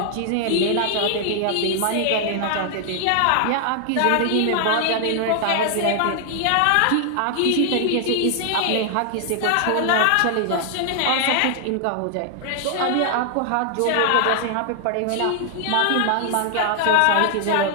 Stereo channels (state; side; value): different; both; correlation 0.00